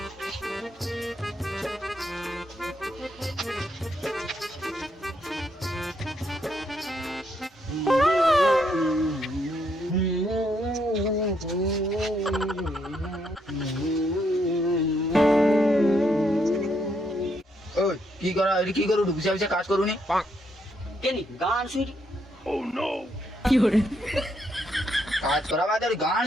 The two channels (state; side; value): normal; both; correlation 0.75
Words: কি করা কি করু বুঝা বুঝা কাজ করুনি কেনি গান শুনি কি করে কাজ করা বাদে গান